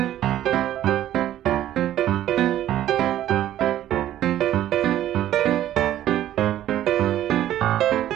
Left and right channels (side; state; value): left; quieter; 12.5 dB